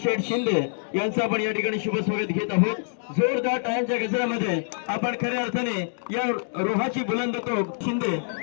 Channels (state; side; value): silent; right; 61 dB below the other